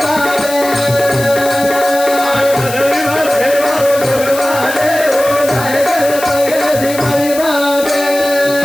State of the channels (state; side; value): noise; left; hiss, 10 dB below the sound